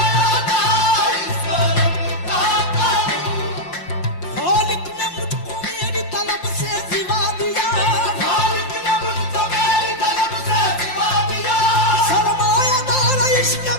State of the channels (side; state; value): right; late; 5.7 ms